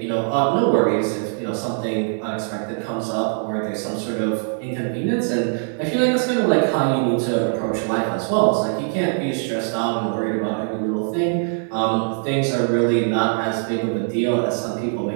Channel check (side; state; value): left; silent; 61 dB below the other